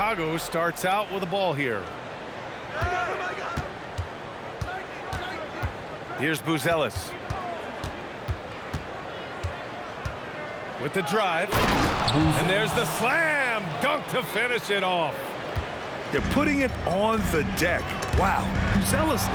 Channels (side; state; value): both; identical; correlation 1.00